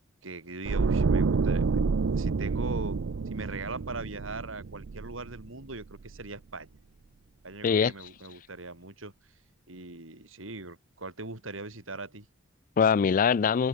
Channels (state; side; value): normal; both; correlation 0.26